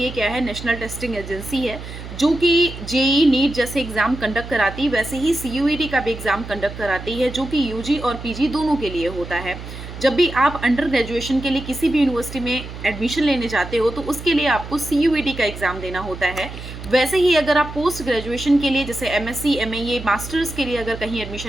क्या है, नेशनल टेस्टिंग एजेंसी है, जो कि JEE नीट जैसे एग्जाम कंडक्ट कराती है, वैसे ही CUET का भी एग्जाम कंडक्ट कराती है, जो कि UG और PG दोनों के लिए होता है। जब भी आप अंडर ग्रेजुएशन के लिए किसी भी यूनिवर्सिटी में एडमिशन लेने जाते हो तो उसके लिए आपको CUET का एग्ज़ाम देना होता है। वैसे ही अगर आप पोस्ट ग्रेजुएशन के लिए, जैसे MSc MA मास्टर्स के लिए अगर कहीं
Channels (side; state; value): right; noise; hum, 11 dB below the sound